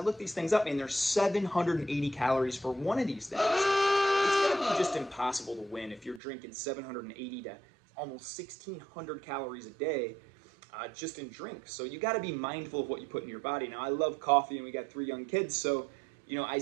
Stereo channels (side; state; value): left; drops out; at 6.2 s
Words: these things up, and there's 780 calories for one of these things. It's going to be just impossible to win if you're drinking 780 to almost 1,600 calories a day just in drinks. So you got to be mindful of what you put in your body. Now, I love coffee, and we got 3 young kids, so you know, I